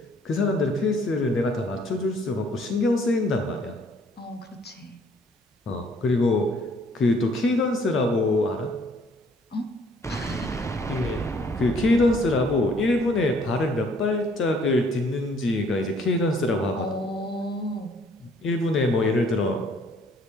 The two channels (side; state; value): both; normal; correlation 0.61